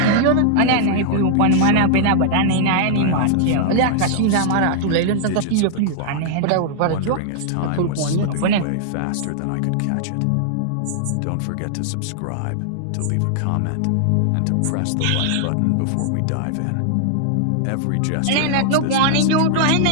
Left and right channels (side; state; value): both; different; correlation -0.01